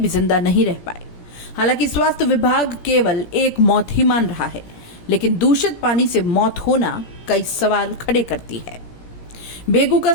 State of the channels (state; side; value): late; right; 17 ms